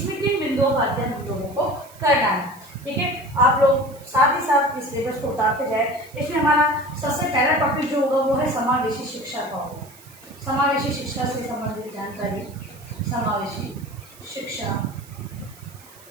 किन बिंदुओं का अध्ययन हम लोगों को करना है। ठीक है, आप लोग साथ ही साथ इस सिलेबस को उतारते जाए। इसमें हमारा सबसे पहला टॉपिक जो होगा वो है समावेशी शिक्षा का होगा। समावेशी शिक्षा से संबंधित जानकारी, समावेशी शिक्षा,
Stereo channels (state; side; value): noise; right; hiss, 23 dB below the sound